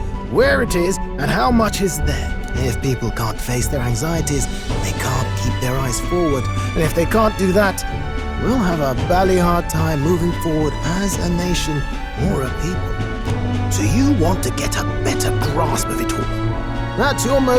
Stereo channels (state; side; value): identical; both; correlation 1.00